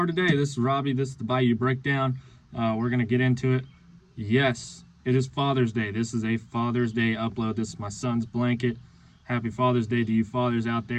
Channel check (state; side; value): identical; both; correlation 1.00